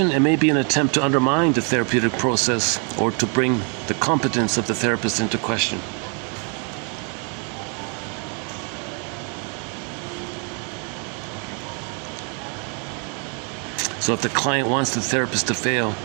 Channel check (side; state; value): left; quieter; 37.9 dB